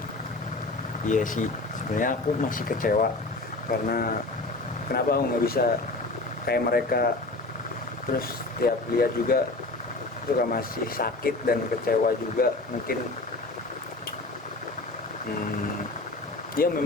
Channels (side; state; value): right; quieter; 3.2 dB